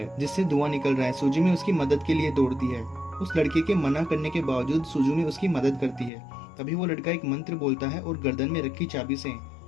जिससे धुआं निकल रहा है। सुजुमी उसकी मदद के लिए दौड़ती है। उस लड़के के मना करने के बावजूद सुजुमी उसकी मदद करती है। तभी वो लड़का एक मंत्र बोलता है और गर्दन में रखी चाबी से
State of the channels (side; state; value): right; drops out; at 6.1 s